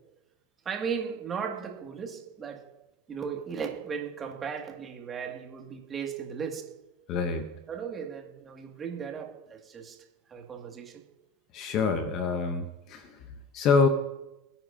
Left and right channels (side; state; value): both; normal; correlation 0.39